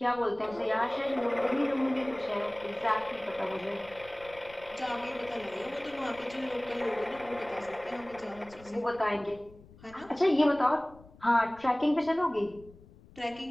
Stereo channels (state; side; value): noise; left; rumble, 23 dB below the sound